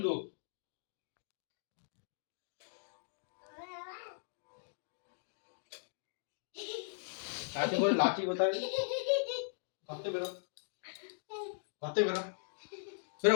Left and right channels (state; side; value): silent; right; digital silence